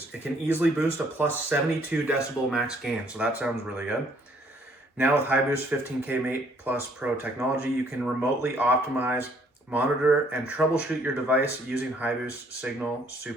It can easily boost a plus 72 decibel max gain, so that sounds really good. Now with HiBoost 15K Mate Plus Pro technology, you can remotely optimize, monitor, and troubleshoot your device using HiBoost Signal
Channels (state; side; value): normal; both; correlation 0.63